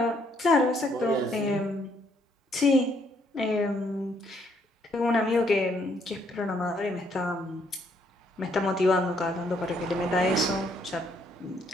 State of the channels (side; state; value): both; normal; correlation 0.69